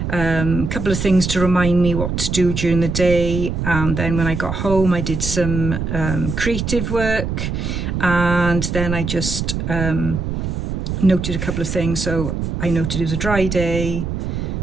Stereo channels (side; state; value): right; noise; rumble, 3 dB below the sound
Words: a couple of things to remind me what to do during the day, and then when I got home I did some creative work, and then I just noted a couple of things. So I noted it was a dry day.